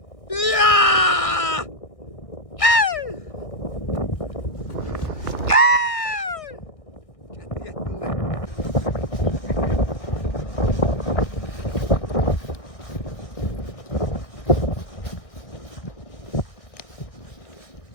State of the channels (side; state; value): right; late; 1.6 ms